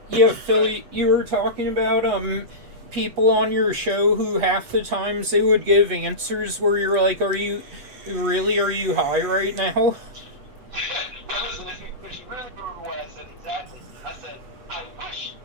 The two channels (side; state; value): left; late; 8.0 ms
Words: yeah, Philly, you were talking about people on your show who half the times they would give answers where you're like, are you high right now? Well, listen, if you really remember what I said exactly, I said, I wish